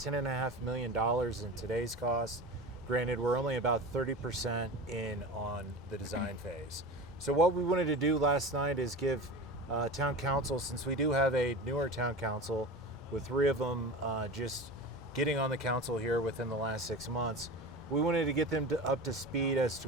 million in today's cost. Granted, we're only about 30% in on the design phase. So what we wanted to do last night is give town council, since we do have a newer town council with 3 of them just getting on the council here within the last 6 months, we wanted to get them up to speed as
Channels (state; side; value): normal; both; correlation 0.31